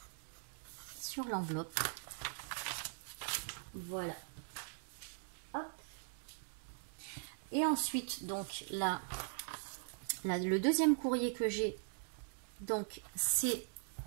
sur l'enveloppe. Voilà. Hop. Et ensuite, donc là, le deuxième courrier que j'ai, donc c'est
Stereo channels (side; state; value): left; silent; digital silence